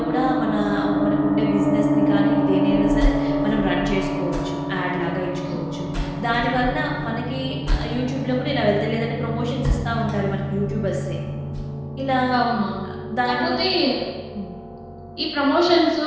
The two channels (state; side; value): identical; both; correlation 1.00